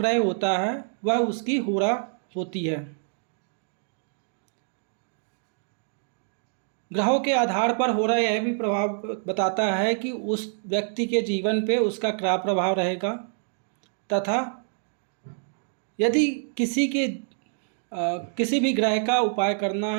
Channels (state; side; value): silent; left; 61 dB below the other